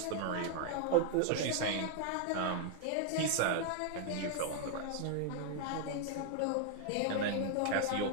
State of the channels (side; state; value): both; different; correlation 0.00